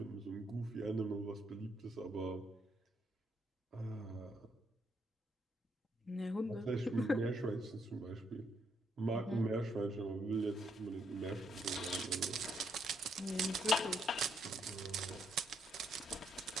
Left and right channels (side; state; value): both; normal; correlation 0.74